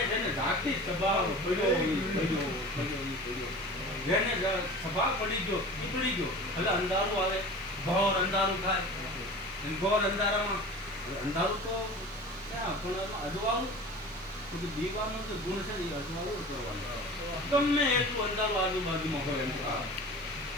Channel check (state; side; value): normal; both; correlation 0.37